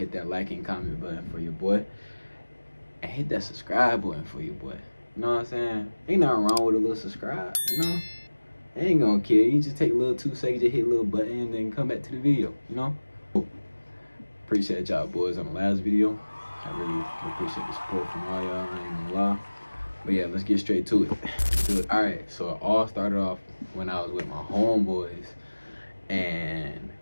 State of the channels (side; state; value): both; inverted; correlation -1.00